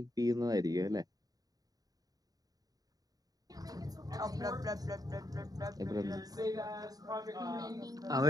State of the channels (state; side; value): late; left; 0.18 ms